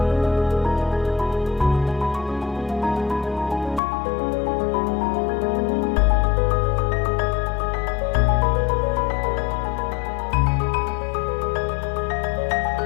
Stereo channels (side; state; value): right; drops out; at 3.8 s